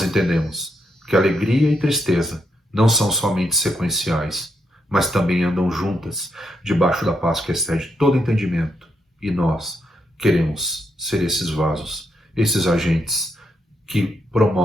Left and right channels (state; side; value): normal; both; correlation 0.79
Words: entendemos que alegria e tristeza não são somente sequenciais, mas também andam juntas, debaixo da paz que excede todo entendimento. E nós queremos ser esses vasos, esses agentes que